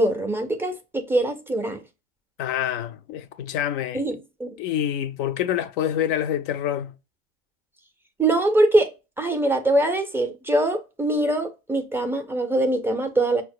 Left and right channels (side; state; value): both; normal; correlation 0.58